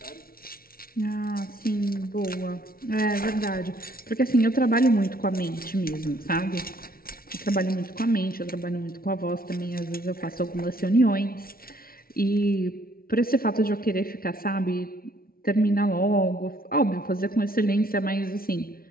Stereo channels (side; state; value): right; late; 0.43 ms